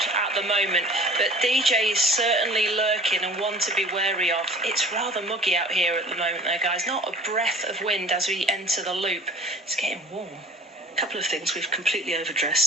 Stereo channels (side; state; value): both; normal; correlation 0.46